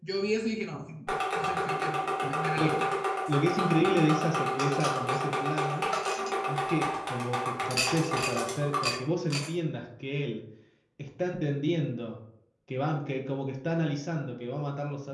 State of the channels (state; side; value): identical; both; correlation 1.00